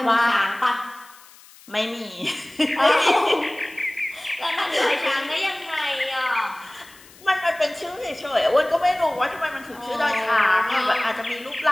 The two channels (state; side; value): noise; left; hiss, 23 dB below the sound